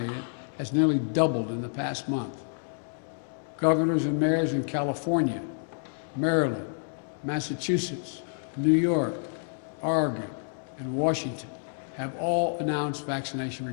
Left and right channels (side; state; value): right; silent; digital silence